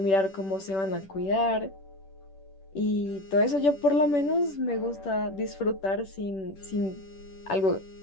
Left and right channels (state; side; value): late; right; 10 ms